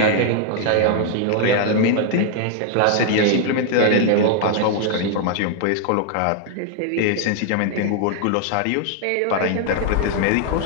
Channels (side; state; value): both; different; correlation 0.00